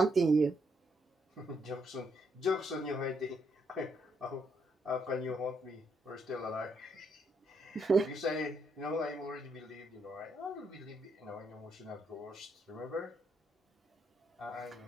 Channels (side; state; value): both; normal; correlation 0.75